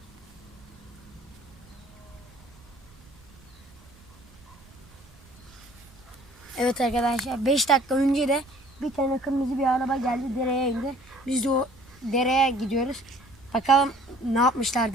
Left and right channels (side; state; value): right; noise; rumble, 25 dB below the sound